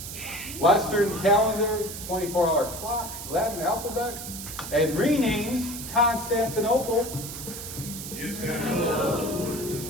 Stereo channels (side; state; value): right; noise; hiss, 9 dB below the sound